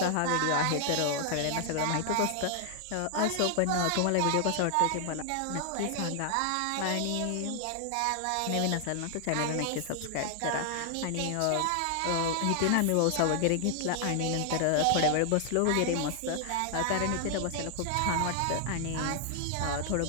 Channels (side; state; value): both; different; correlation 0.00